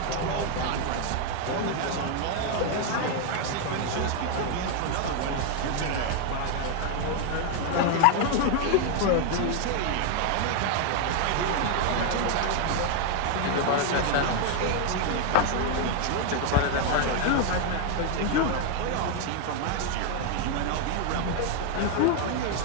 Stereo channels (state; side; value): different; both; correlation 0.00